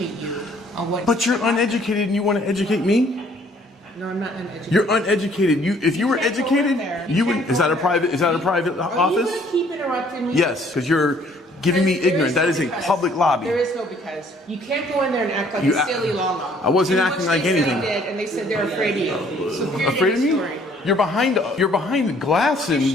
you on what. But you're uneducated and you want to educate me? No, I'm not uneducated. You're uneducated. If you were educated, you would. Is that a private Are you office? gonna keep interrupting me? Yes, because you're giving me ignorant. That is a public lobby. There is no because. You can't go in there and act like You a act- silly Lala. I wasn't You know acting what like they said anything. they did, and they said they're afraid of you. So period Afraid of end me? story. You're behind the glass and Shoving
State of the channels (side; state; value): both; normal; correlation 0.60